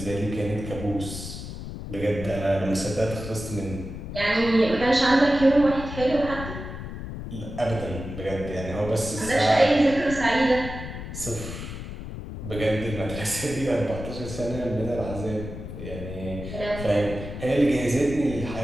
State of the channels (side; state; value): left; noise; rumble, 9 dB below the sound